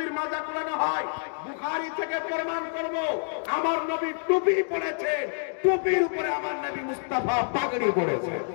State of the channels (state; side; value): silent; right; digital silence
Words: মাজা কুড়ানো হয়। বুখারী থেকে প্রমাণ করব আমার নবী টুপি পরেছে, টুপির উপরে আমার নবী মুস্তাফা পাগড়ি পরেছে।